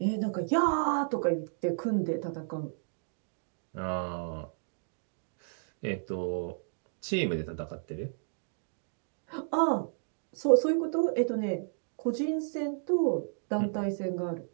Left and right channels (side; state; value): left; silent; digital silence